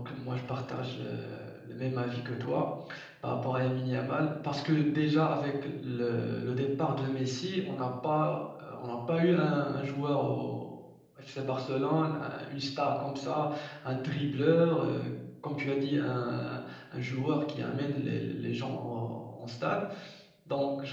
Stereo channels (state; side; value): identical; both; correlation 1.00